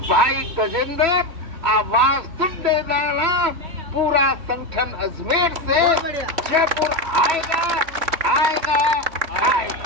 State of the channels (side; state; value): left; late; 3.0 ms